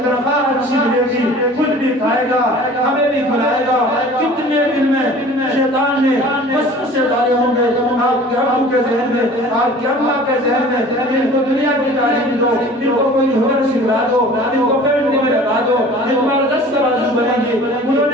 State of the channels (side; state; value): both; normal; correlation 0.45